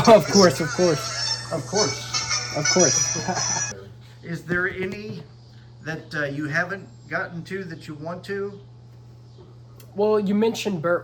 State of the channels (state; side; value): identical; both; correlation 1.00